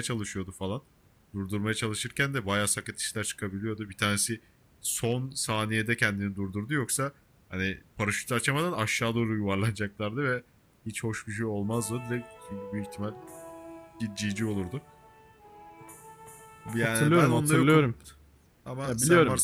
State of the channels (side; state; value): both; identical; correlation 1.00